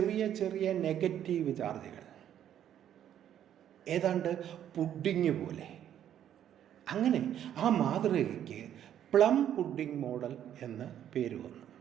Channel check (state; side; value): quieter; left; 10.4 dB